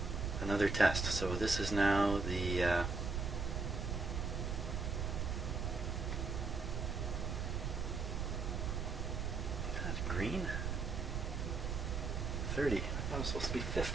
test. So this is now the that's green. 30. I thought it was supposed to be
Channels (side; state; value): right; noise; rumble, 1 dB below the sound